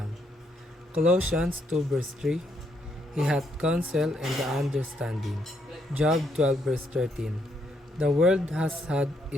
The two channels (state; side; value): normal; both; correlation 0.74